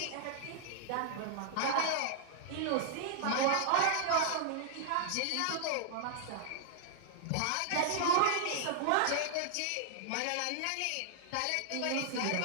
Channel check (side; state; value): both; different; correlation -0.01